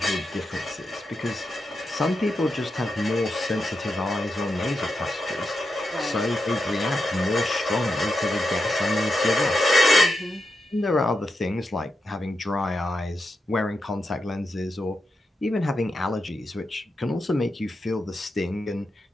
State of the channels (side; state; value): both; normal; correlation 0.86